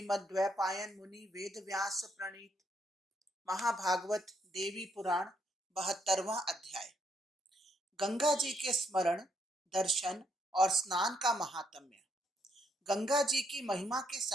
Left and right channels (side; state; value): both; normal; correlation 0.73